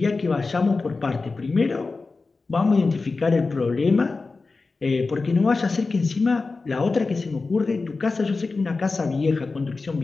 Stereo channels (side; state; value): right; quieter; 3.9 dB